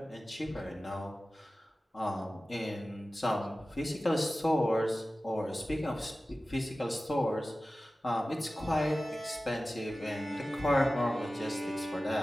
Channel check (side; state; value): both; normal; correlation 0.96